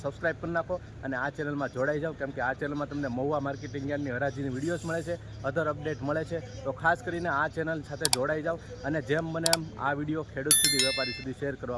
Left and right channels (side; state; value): both; identical; correlation 1.00